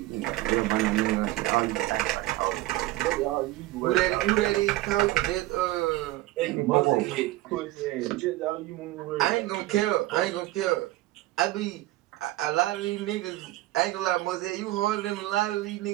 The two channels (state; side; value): quieter; left; 17.4 dB